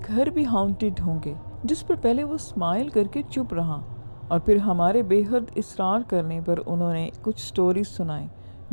گھر بھی ہانٹڈ ہوں گے، جس پر پہلے وہ اسمائل کر کے چپ رہا، اور پھر ہمارے بے حد اصرار کرنے پر انہوں نے کچھ سٹوریز سنائیں،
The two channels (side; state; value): both; inverted; correlation -1.00